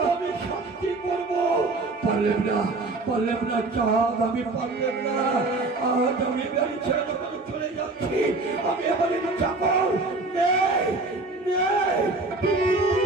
আমি শান্তি করবো। পারলাম না চাঁদ, আমি পারলাম না। আজ আমি গাড়ি ছেড়ে চলে যাচ্ছি। আমি এবার যাবো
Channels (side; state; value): left; quieter; 3.3 dB